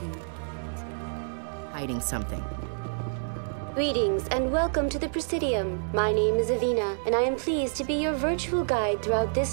perfect. Like they're hiding something. Greetings and welcome to the Presidium. My name is Avina, and I am pleased to be your virtual guide throughout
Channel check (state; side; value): silent; left; digital silence